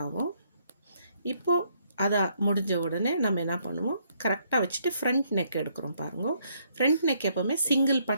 ஆகும். இப்போது அதை முடிஞ்ச உடனே நம்ம என்ன பண்ணுவோம், கரெக்டாக வச்சுட்டு ஃப்ரண்ட் நெக் எடுக்கிறோம். பாருங்க, ஃப்ரண்ட் நெக் எப்போவுமே சிங்கிள்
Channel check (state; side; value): inverted; both; correlation -0.71